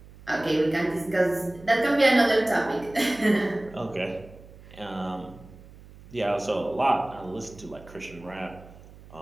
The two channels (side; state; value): right; noise; hum, 20 dB below the sound